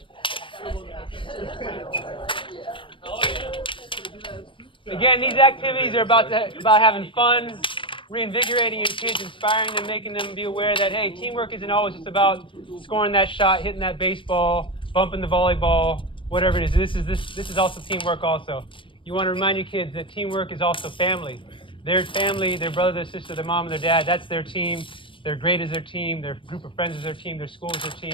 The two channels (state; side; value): late; right; 0.25 ms